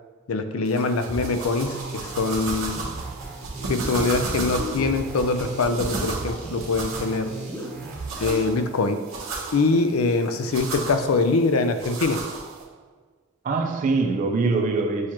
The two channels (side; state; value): both; normal; correlation 0.21